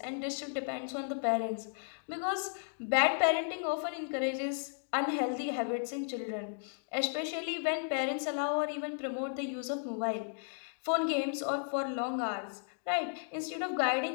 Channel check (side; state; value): right; silent; digital silence